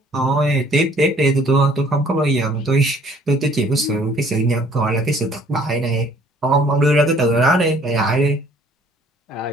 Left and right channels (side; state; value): both; normal; correlation 0.58